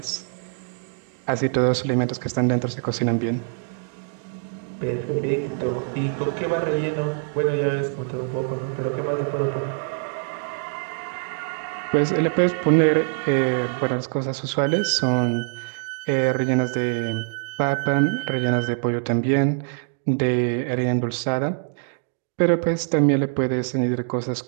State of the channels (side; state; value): left; silent; digital silence